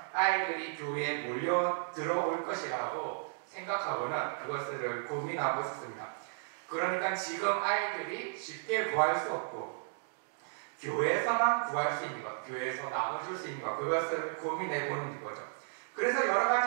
아이들이 교회에 몰려 들어올 것이라고 생각하고는 그것을 고민하고 있습니다. 그러니까 지금 아이들이 쉽게 구할 수 없고 교회에서만 구할 수 있는 것, 교회에서 나눠줄 수 있는 것 그것을 고민해 보는 거죠. 그래서 여러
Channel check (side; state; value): left; silent; digital silence